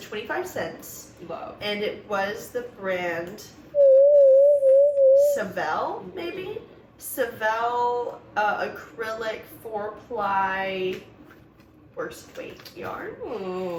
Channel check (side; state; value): both; identical; correlation 1.00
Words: 25 cents. Love. And it was the brand Savell, maybe? Savell acrylic 4-ply worst weight yarn.